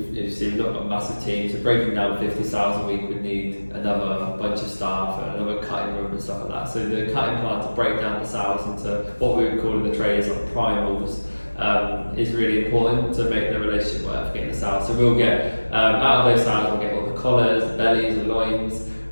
not got a massive team, so breaking down 50 sows a week would need another bunch of staff and another cutting room and stuff like that. So the cutting plant to break down the sows into what we would call in the trade as like primals is really important to make the relationship work for getting the sows. So we'll get out of those sows, we'll get all the collars, the bellies, the loins.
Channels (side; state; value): both; inverted; correlation -1.00